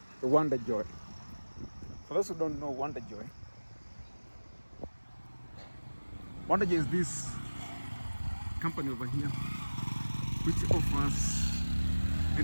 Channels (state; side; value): inverted; both; correlation -1.00